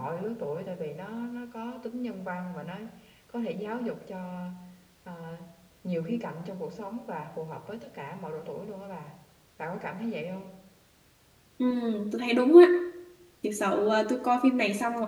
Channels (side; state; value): both; identical; correlation 1.00